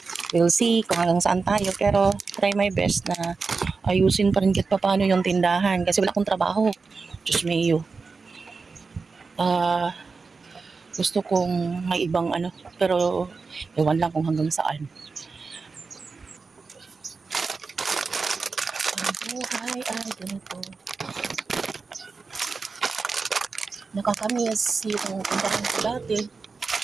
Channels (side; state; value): left; quieter; 4.5 dB